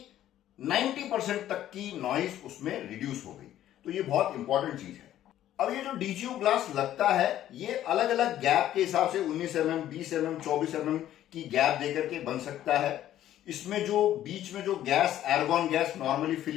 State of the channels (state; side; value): quieter; right; 12.4 dB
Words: 90% तक की नॉइज उसमें रिड्यूस हो गई। तो ये बहुत इंपॉर्टेंट चीज है। अब ये जो DGU ग्लास लगता है ये अलग अलग गैप के हिसाब से 19 mm, 20 mm, 24 mm की गैप देकर के बन सकता है। इसमें जो बीच में जो गैस, एर्गॉन गैस नॉर्मली